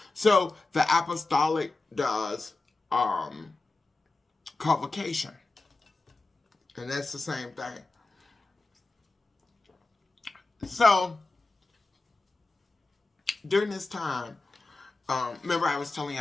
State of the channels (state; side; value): quieter; right; 3.4 dB